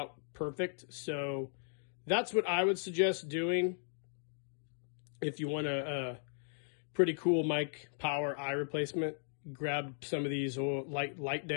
perfect, so that's what I would suggest doing if you want a pretty cool Mike Power eye replacement. Grab some of these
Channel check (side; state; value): right; silent; digital silence